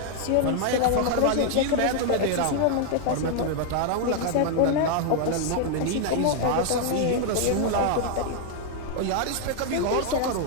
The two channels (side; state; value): both; different; correlation 0.00